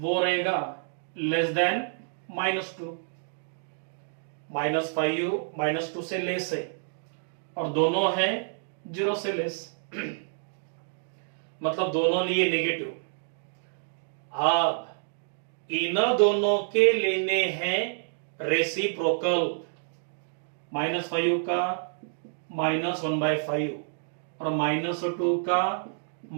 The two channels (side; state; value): left; silent; digital silence